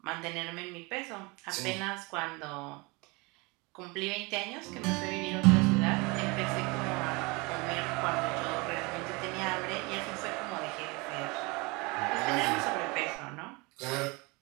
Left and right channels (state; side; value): quieter; left; 26.7 dB